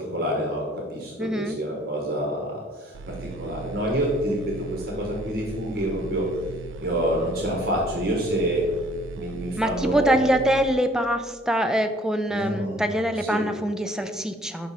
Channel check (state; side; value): normal; both; correlation 0.58